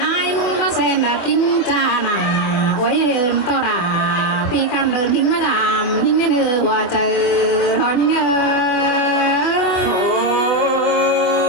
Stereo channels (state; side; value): late; right; 24 ms